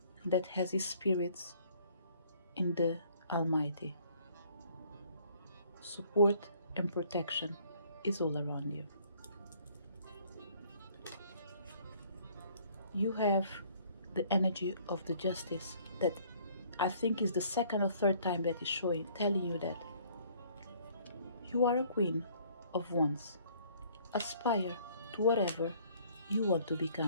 that has his spirits in the Almighty. Support and protection is all around you. You have the energy of the Justice that I think is the second or third time that is showing, telling you that You are a queen of wands. Aspire to whatever you want to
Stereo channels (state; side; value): inverted; both; correlation -0.59